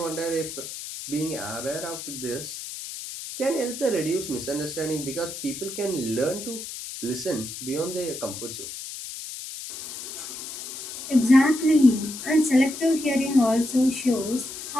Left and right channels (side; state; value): left; noise; hiss, 9 dB below the sound